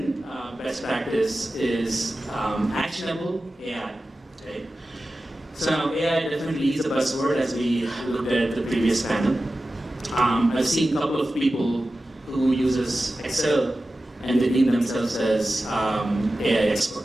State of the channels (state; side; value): normal; both; correlation 0.94